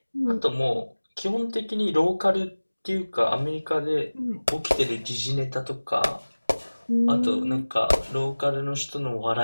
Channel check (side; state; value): both; inverted; correlation -1.00